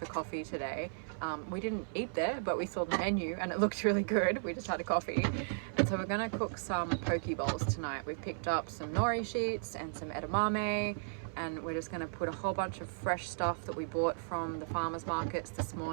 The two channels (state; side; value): silent; left; 54 dB below the other